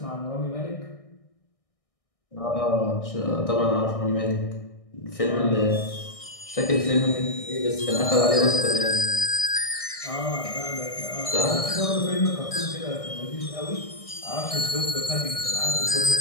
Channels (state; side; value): late; right; 1.6 ms